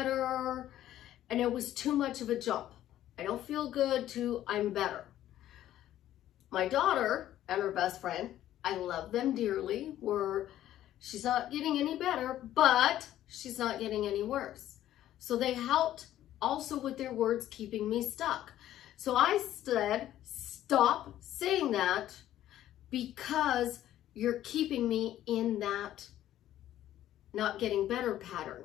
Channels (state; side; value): quieter; right; 12.7 dB